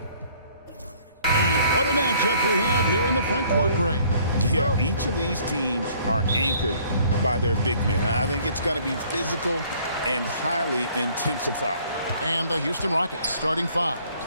And what a matchup we have here in the front court, Greg. Yeah, each of these teams are anchored by their big men. I think it's going to be physical and highly intensified. And the Houston Rockets starting five.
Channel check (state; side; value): inverted; both; correlation -0.58